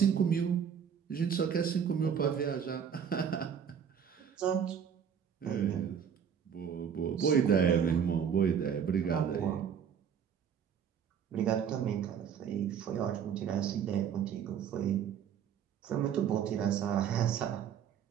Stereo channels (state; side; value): quieter; left; 7.9 dB